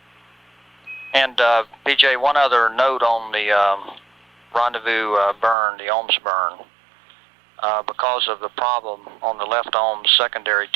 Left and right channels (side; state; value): left; drops out; at 5.6 s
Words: And PJ, one other note on the Rendezvous burn, the ohms burn. Because of the problem on the left ohms secondary